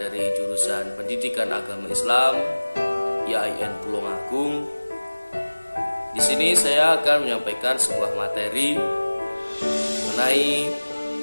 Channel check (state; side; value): inverted; both; correlation -1.00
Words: jurusan Pendidikan Agama Islam IAIN Tulungagung. Di sini saya akan menyampaikan sebuah materi mengenai